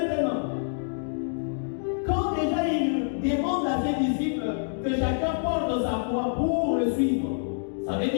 quand déjà il demande à ses disciples que chacun porte sa foi pour le suivre, ça veut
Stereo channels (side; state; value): right; silent; digital silence